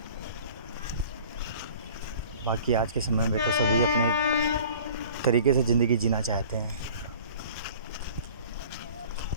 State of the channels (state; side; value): inverted; both; correlation -0.46